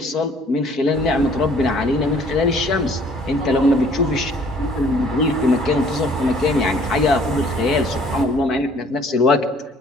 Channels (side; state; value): both; normal; correlation 0.57